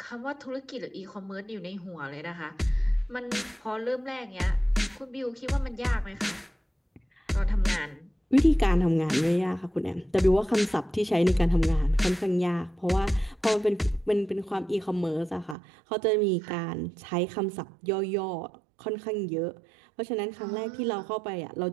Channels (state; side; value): drops out; left; at 15.6 s